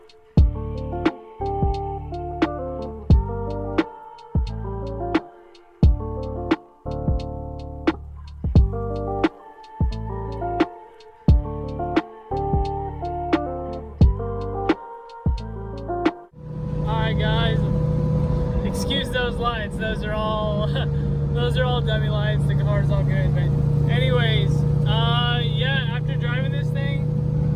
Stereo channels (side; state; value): both; identical; correlation 1.00